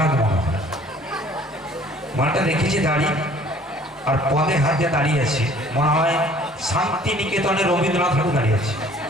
মনে হয়। মালটা দেখেছি দাঁড়িয়ে, আর পদে হাত দিয়ে দাঁড়িয়ে আছে, মনে হয় শান্তিনিকেতনে রবীন্দ্রনাথ ঠাকুর দাঁড়িয়ে আছে।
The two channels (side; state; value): both; normal; correlation 0.54